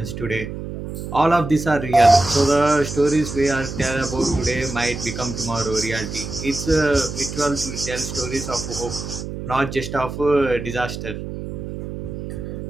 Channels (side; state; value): right; noise; hum, 8 dB below the sound